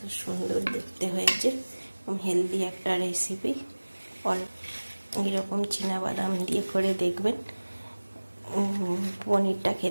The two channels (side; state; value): both; inverted; correlation -1.00